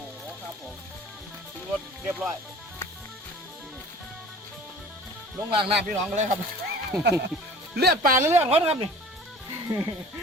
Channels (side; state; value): both; normal; correlation 0.44